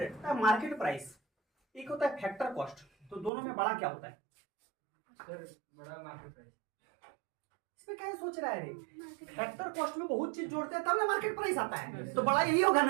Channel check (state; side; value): drops out; left; at 3.3 s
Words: मार्केट प्राइस एक होता है फैक्टर कॉस्ट। तो दोनों में बड़ा क्या होता है? सर बड़ा मार्केट प्राइस। इसमें क्या सोच रहा है रे? फैक्टर कॉस्ट में बहुत चीज जोड़ते हैं तब ना मार्केट प्राइस आता है। तो बड़ा यही होगा